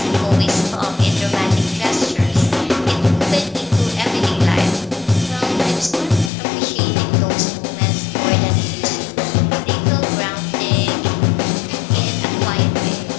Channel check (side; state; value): right; drops out; at 6.3 s